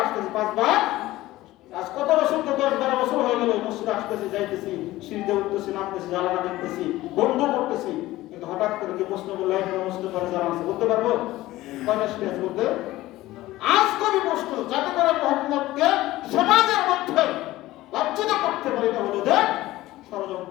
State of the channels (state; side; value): quieter; right; 16.9 dB